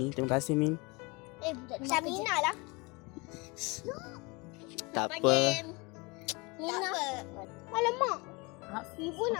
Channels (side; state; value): right; quieter; 27.0 dB